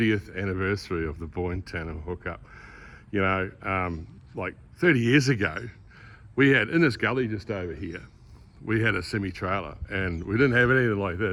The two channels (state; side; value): identical; both; correlation 1.00